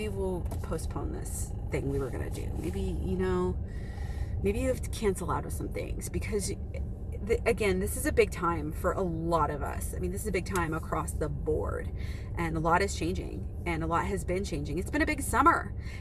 we'll postpone this thing we were going to do. Maybe, you know, maybe you have to cancel out of some things, because again, this is a big time for a lot of us. I mean, this is a big time across the board, and a lot is changing, and a lot has been changing. It's been a big summer,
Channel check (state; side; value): identical; both; correlation 1.00